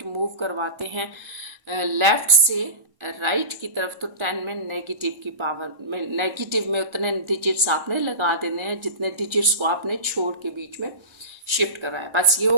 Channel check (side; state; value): left; late; 1.4 ms